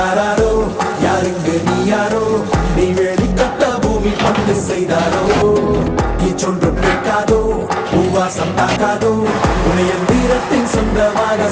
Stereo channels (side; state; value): both; identical; correlation 1.00